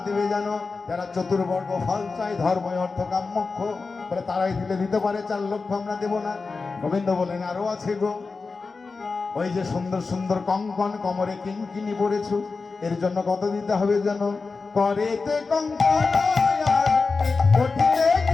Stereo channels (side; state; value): right; quieter; 4.3 dB